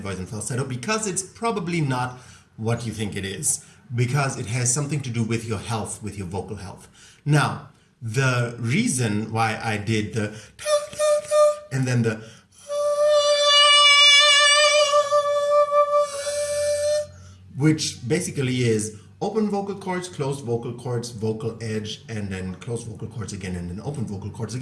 and falsetto, because it's probably not what you think it is, because it has something to do with your health, with your vocal health. Now, the reason why I did the and then the which basically is open vocal cords, closed vocal cords, vocal edge, and then closed vocal cords again, and then open vocal cords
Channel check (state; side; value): identical; both; correlation 1.00